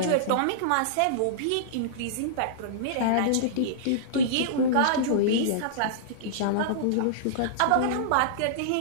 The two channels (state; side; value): different; both; correlation -0.02